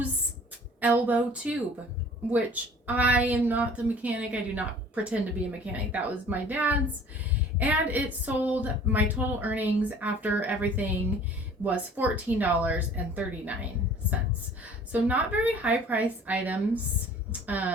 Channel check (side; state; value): both; normal; correlation 0.49